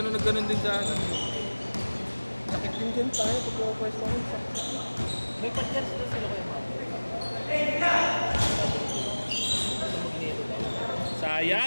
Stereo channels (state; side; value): inverted; both; correlation -1.00